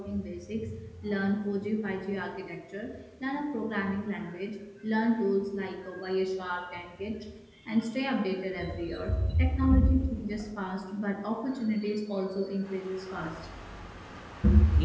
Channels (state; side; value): identical; both; correlation 1.00